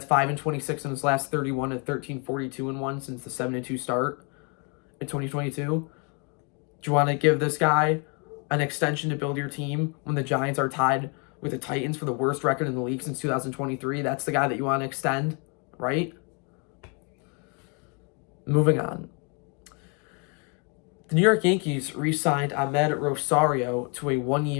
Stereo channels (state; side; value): quieter; right; 35.1 dB